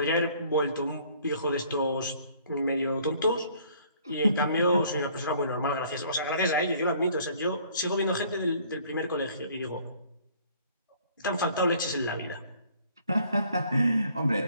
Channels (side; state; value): both; inverted; correlation -0.58